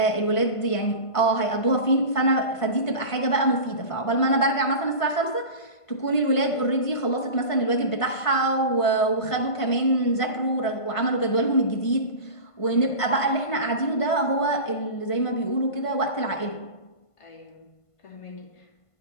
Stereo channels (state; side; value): late; right; 1.5 ms